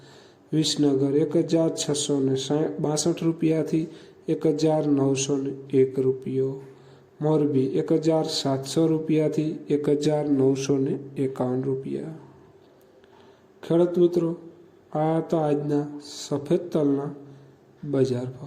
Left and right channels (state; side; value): identical; both; correlation 1.00